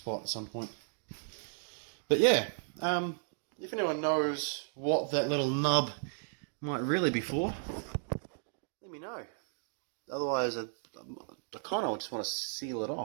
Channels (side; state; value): left; silent; digital silence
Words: at some point. But yeah, if anyone knows what that little nub might really be for, let me know. Otherwise, I kind of just want to seal it